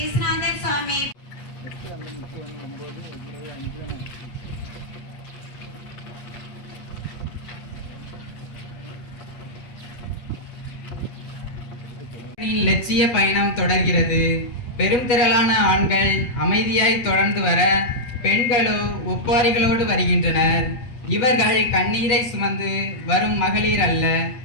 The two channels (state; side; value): late; right; 8.3 ms